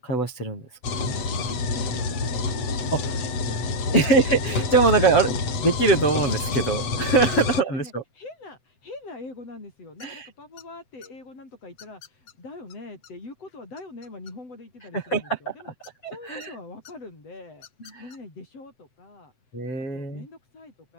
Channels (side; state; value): right; late; 7.9 ms